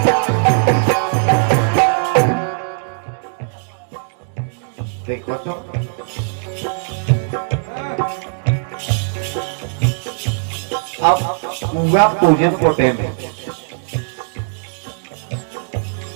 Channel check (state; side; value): silent; left; digital silence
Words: देखो तो अब पूरा पूजन को टाइम है